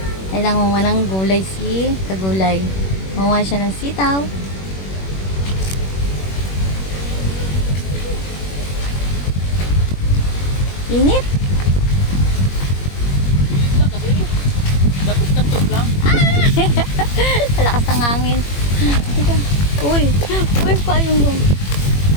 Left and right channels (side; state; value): right; late; 21 ms